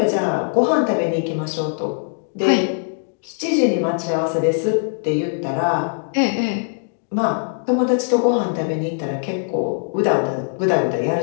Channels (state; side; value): silent; right; 65 dB below the other